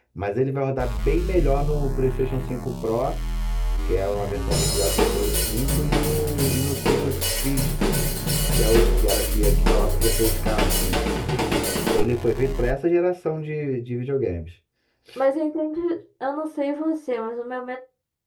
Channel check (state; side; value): identical; both; correlation 1.00